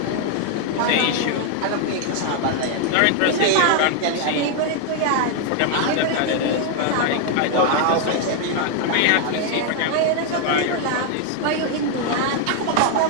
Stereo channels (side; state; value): both; different; correlation 0.00